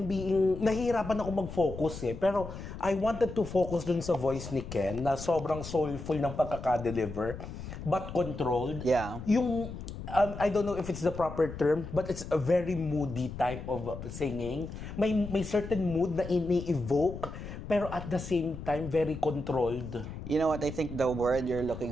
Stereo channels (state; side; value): noise; left; rumble, 10 dB below the sound